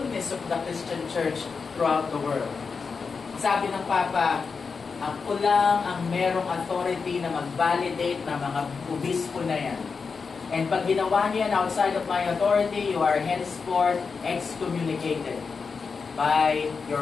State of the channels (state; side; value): quieter; right; 5.1 dB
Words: of the Christian Church throughout the world. Sabi ng Papa, ako lang ang merong authority na mag-validate ng mga obispo na yan. And pag ginawa niyan outside of my authority, you are henceforth excommunicated by your